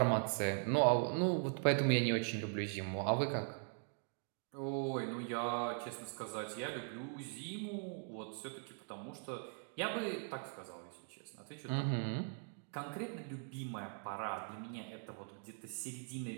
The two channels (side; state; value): left; silent; 51 dB below the other